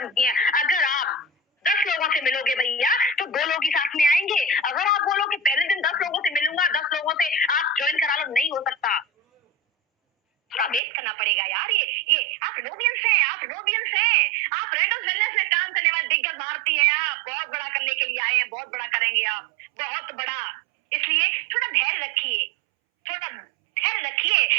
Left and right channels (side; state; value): left; drops out; at 10.8 s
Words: की है। अगर आप 10 लोगों से मिलोगे भैया, तो 2 लोग ही साथ में आएंगे। अगर आप बोलो कि पहले दिन 10 लोगों से मिलूंगा, 10 लोगों से आप ज्वाइन करा लो, नहीं हो सकता, थोड़ा वेट करना पड़ेगा यार। ये आप रोबियंस हैं, आप रेंडर्स वेलनेस में काम करने वाले दिग्गज भारतीय हैं। आप बहुत बड़ा करने के लिए आए हैं, बहुत बड़ा करेंगे आप, बहुत बड़ा। इसलिए थोड़ा धैर्य रखिए।